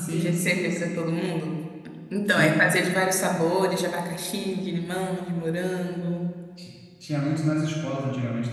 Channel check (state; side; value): identical; both; correlation 1.00